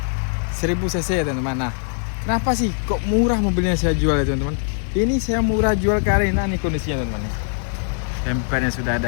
1000 cc teman-teman. Nah, kenapa sih kok murah mobilnya saya jual ya teman-teman? Ini saya murah jual karena ini kondisinya teman-teman. Bempernya sudah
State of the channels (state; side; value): silent; right; digital silence